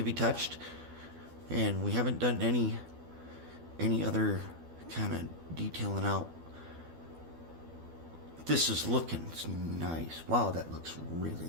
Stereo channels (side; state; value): left; late; 12 ms